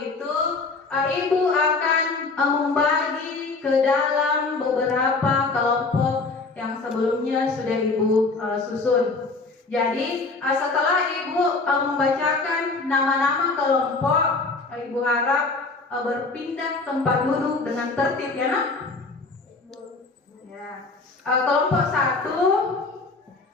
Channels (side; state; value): right; quieter; 3.8 dB